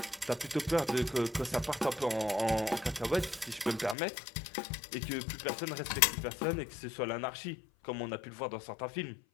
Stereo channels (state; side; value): drops out; right; at 4.0 s